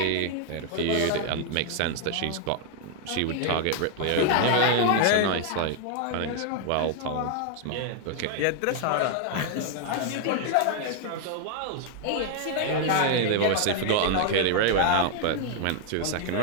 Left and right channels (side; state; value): both; different; correlation 0.00